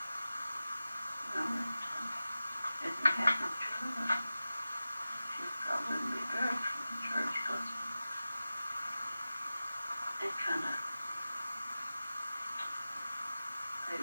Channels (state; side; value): inverted; both; correlation -0.95